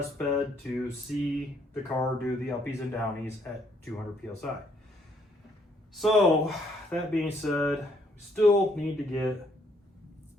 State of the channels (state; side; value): normal; both; correlation 0.68